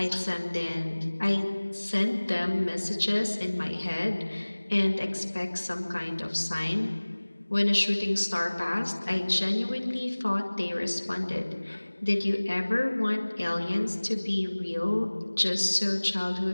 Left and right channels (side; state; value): both; inverted; correlation -1.00